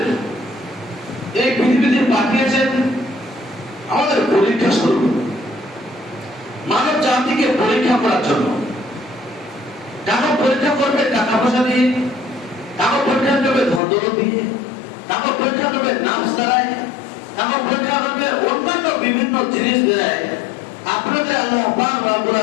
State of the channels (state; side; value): drops out; right; at 13.8 s